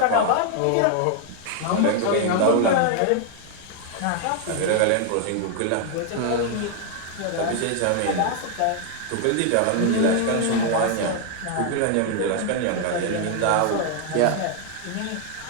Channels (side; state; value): both; different; correlation 0.00